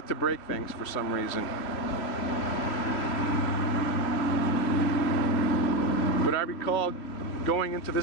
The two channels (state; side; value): late; right; 2.9 ms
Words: to break things for some reason. But I recall going into